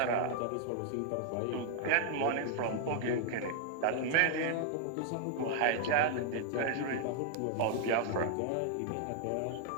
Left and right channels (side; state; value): both; different; correlation 0.00